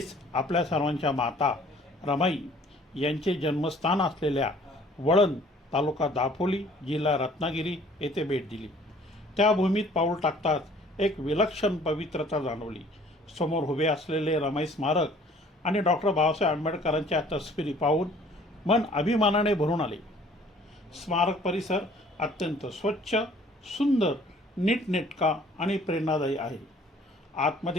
आपल्या सर्वांच्या माता रमाई यांचे जन्मस्थान असलेल्या वळण तालुका दापोली जिल्हा रत्नागिरी येथे भेट दिली. त्या भूमीत पाऊल टाकताच एक विलक्षण पवित्रता जाणवली. समोर उभे असलेले रमाई स्मारक आणि डॉक्टर बाबासाहेब आंबेडकरांच्या तस्वीरी पाहून मन अभिमानाने भरून आले. स्मारक परिसर अत्यंत स्वच्छ, सुंदर, नीटनेटका आणि प्रेरणादायी आहे.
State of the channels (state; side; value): normal; both; correlation 0.55